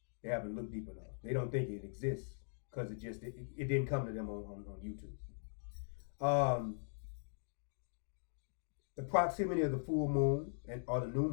They haven't looked deep enough. They don't think it exists because it didn't come to them on YouTube. The proximity of the full moon or the new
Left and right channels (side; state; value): right; silent; digital silence